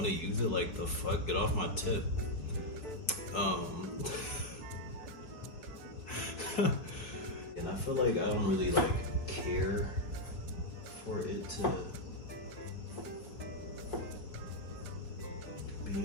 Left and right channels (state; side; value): late; right; 4.6 ms